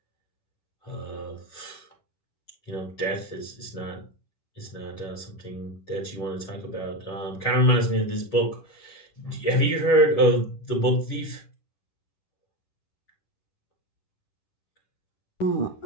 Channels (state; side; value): late; right; 10 ms